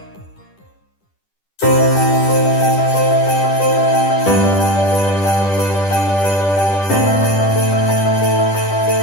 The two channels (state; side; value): late; right; 10 ms